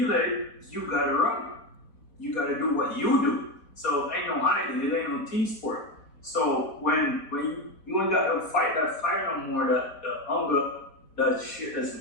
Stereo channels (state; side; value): late; right; 4.1 ms